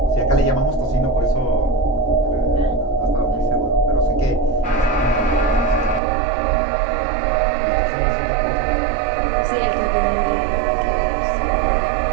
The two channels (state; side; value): drops out; left; at 6.0 s